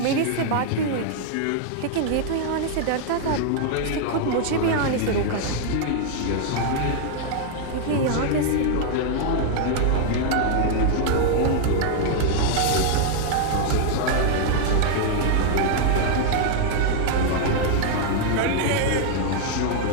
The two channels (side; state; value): both; different; correlation 0.00